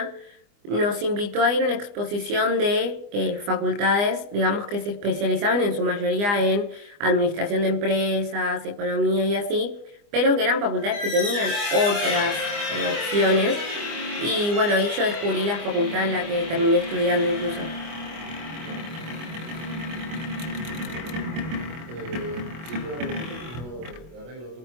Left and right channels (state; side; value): late; left; 25 ms